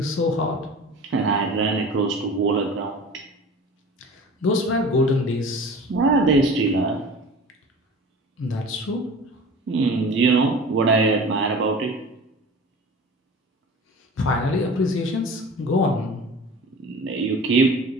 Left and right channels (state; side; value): normal; both; correlation 0.39